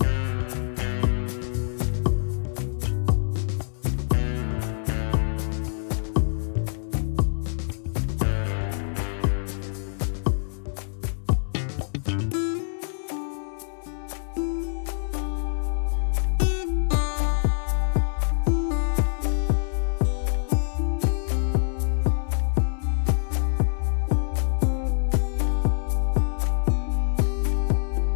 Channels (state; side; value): silent; right; digital silence